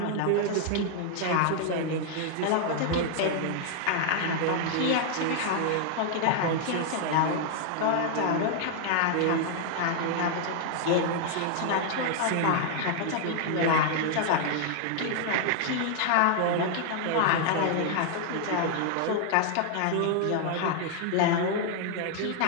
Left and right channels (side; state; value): both; different; correlation 0.00